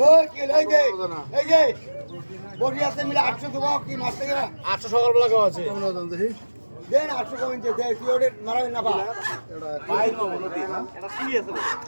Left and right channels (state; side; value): inverted; both; correlation -1.00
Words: ও কি লই দে এই যে বডি আছে মিলে 800 দেব কি মাছ থেকে 800 সকালবেলা কেমন আছে কেমন দাম দেখি দেন 800 কমেন দে দে কি ওরে মারাই না বা বাইর মামু নদী এটা কি আছে